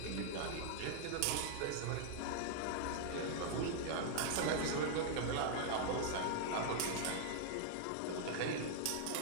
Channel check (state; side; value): different; both; correlation -0.01